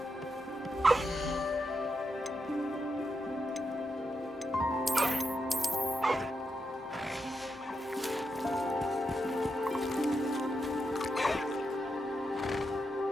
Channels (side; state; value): both; normal; correlation 0.85